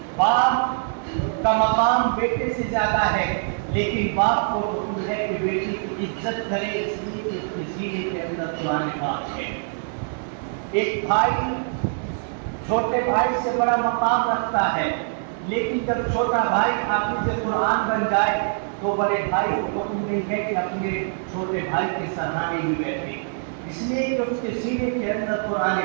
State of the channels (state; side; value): silent; left; 62 dB below the other